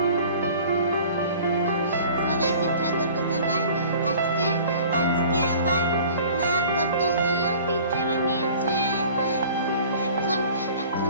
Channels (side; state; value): both; inverted; correlation -0.47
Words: সবাইকে স্বাগত জানাই। আজকে আমার মা কতগুলো পিঠে বানিয়েছে। এখন